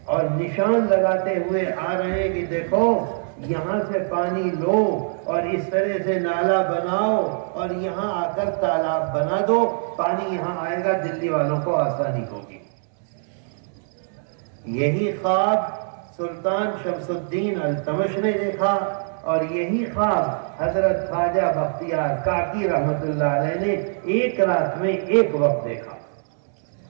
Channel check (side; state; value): left; silent; 63 dB below the other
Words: اور نشان لگاتے ہوئے آ رہے ہیں کہ دیکھو یہاں سے پانی لو اور اس طرح سے نالا بناؤ اور یہاں آ کر تالاب بنا دو، پانی یہاں آئے گا، دلی والوں کو آسانی ہوگی۔ یہی خواب سلطان شمس الدین التمش نے دیکھا، اور یہی خواب حضرت خواجہ بختیار کاکی رحمت اللہ علیہ نے ایک رات میں ایک وقت دیکھا۔